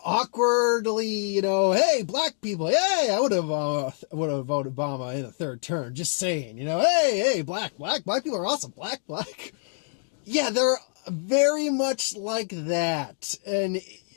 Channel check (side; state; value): right; silent; 61 dB below the other